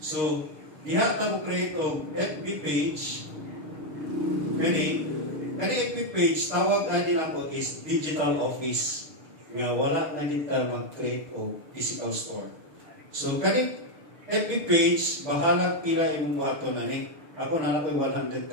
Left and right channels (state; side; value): late; left; 6.4 ms